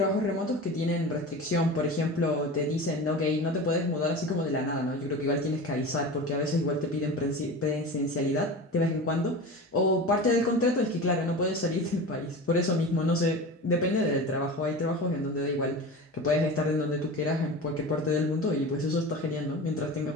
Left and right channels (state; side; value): normal; both; correlation 0.30